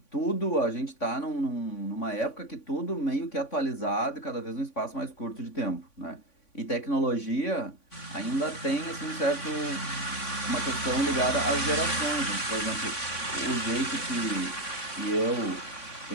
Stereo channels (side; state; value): right; late; 3.5 ms